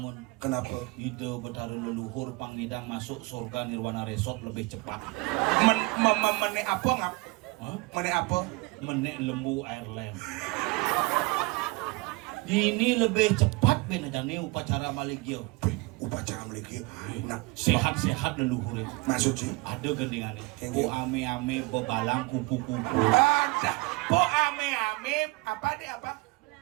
Kenapa? Itu betara leluhur pangidang masuk surga nirwana resort lebih cepat. Mene apa ngap? Hah? Mana apa? Menek lembu Ireland. Ini lebih cepat ben jane upacara maligyo. Upacara meliki. Nah, Sehat-sehat leluhur itu. maksud sih. Ada gendingannya. Kengke. Bu ame-ame bebalang kupu-kupu. Ada. Po ame-ame apa deh apa?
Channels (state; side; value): quieter; left; 25.0 dB